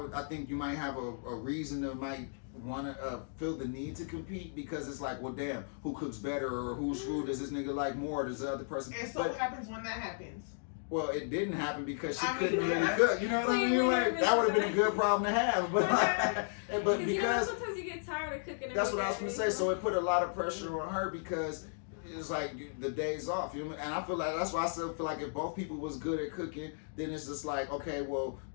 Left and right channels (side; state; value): right; silent; digital silence